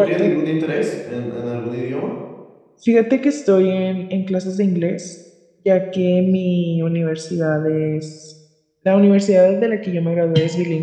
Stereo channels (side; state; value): both; identical; correlation 1.00